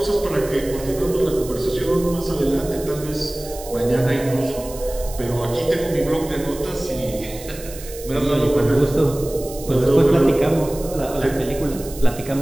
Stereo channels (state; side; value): noise; right; hiss, 15 dB below the sound